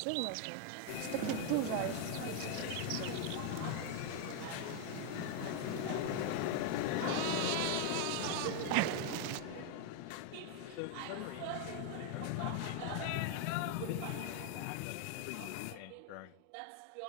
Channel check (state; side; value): different; both; correlation 0.00